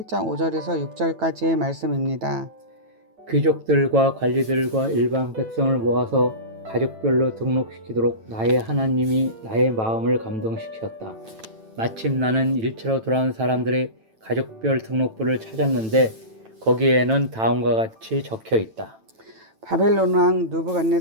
5절에서 6절까지의 말씀입니다. 귀족들과 관리들과 일반 백성을 모아서 가족별로 등록시키도록 나의 하나님이 나의 마음을 감동시켰다. 마침 나는 일처로 돌아온 사람들의 가족별 등록부를 찾았는데 거기에는 다음과 같이 적혀 있다. 바벨론 왕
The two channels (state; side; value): late; left; 9.1 ms